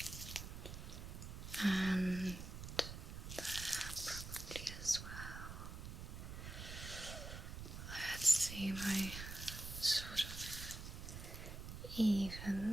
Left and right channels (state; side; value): noise; right; rumble, 8 dB below the sound